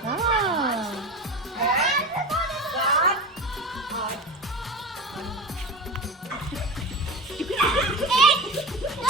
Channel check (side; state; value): both; normal; correlation 0.28